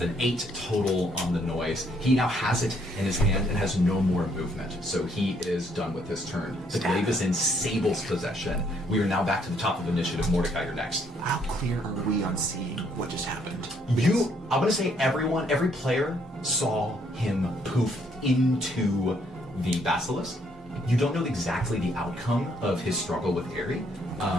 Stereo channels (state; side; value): normal; both; correlation 0.69